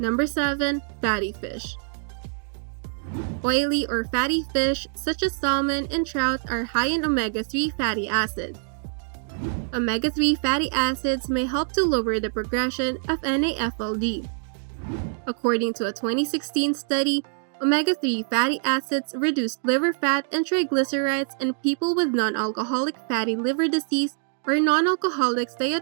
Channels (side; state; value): left; silent; digital silence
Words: 7. Fatty fish. Oily or fatty fish such as salmon and trout are high in omega-3 fatty acids. Omega-3 fatty acids may help to lower the progression of NAFLD. According to a 2016 study, omega-3 fatty acids reduced liver fat and triglycerides in people with non-alcoholic fatty liver disease or non-alcoholic